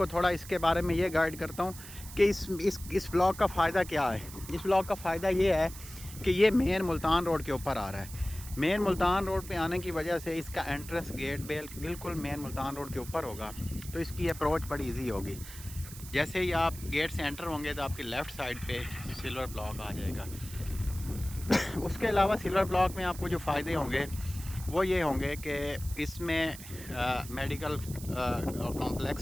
थोड़ा इसके बारे में ये गाइड करता हूँ कि इस ब्लॉक का फ़ायदा क्या है। इस ब्लॉक का फ़ायदा ये है कि ये मेन मुल्तान रोड के ऊपर आ रहा है। मेन मुल्तान रोड पे आने की वजह से इसका एंट्रेंस गेट बिल्कुल मेन मुल्तान रोड के ऊपर होगा, तो इसकी अप्रोच बड़ी इजी होगी। जैसे ही आप गेट से एंटर होंगे तो आपकी लेफ़्ट साइड पे सिल्वर ब्लॉक आ जाएगा। उसके अलावा सिल्वर ब्लॉक में आपको जो फ़ायदे होंगे वो ये होंगे कि इसमें मेडिकल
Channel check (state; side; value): noise; right; hiss, 14 dB below the sound